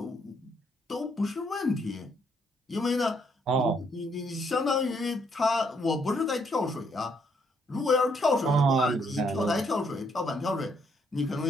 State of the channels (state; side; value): normal; both; correlation 0.71